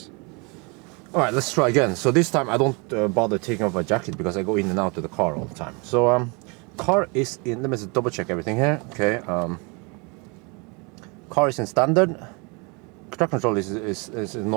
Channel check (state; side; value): quieter; left; 30.6 dB